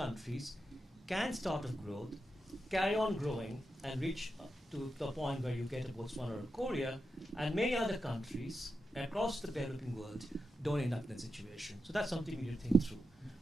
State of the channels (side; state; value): both; normal; correlation 0.88